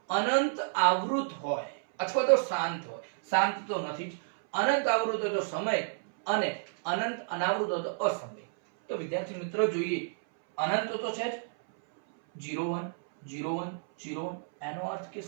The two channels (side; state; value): left; silent; 58 dB below the other